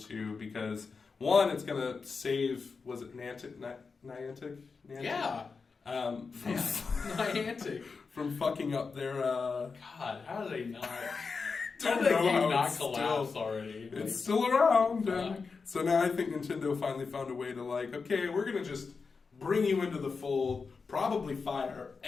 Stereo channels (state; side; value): quieter; right; 4.8 dB